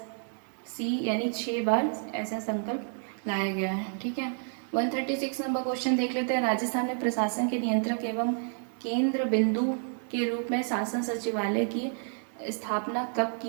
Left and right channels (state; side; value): silent; left; 58 dB below the other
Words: यानी 6 बार ऐसा संकल्प लाया गया है। ठीक है। 136 नंबर क्वेश्चन देख लेते हैं। राजस्थान में प्रशासन के नियंत्रक एवं केंद्र बिंदु के रूप में शासन सचिवालय की स्थापना कब